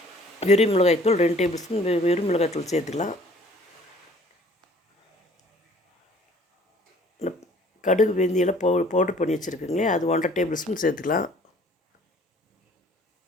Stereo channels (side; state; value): both; normal; correlation 0.55